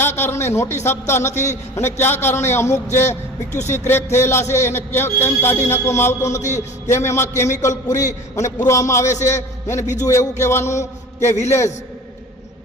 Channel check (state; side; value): normal; both; correlation 0.40